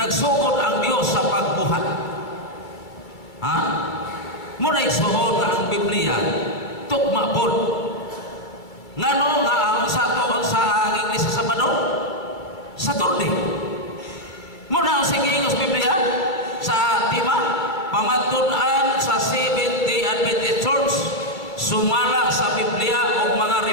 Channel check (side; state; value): right; late; 2.3 ms